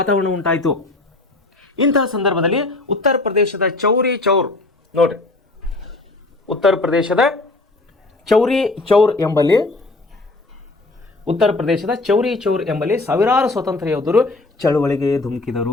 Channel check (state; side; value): quieter; right; 3.1 dB